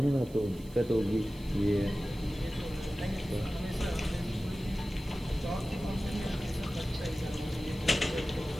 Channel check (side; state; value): right; noise; hiss, 23 dB below the sound